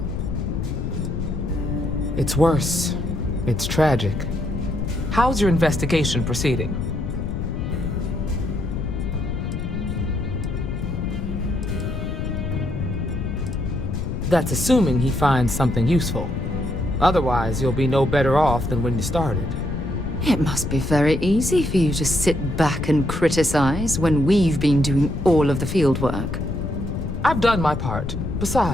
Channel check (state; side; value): noise; left; rumble, 3 dB below the sound